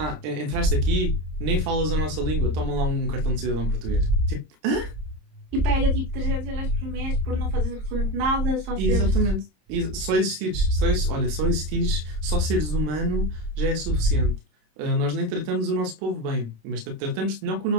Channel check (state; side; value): late; left; 26 ms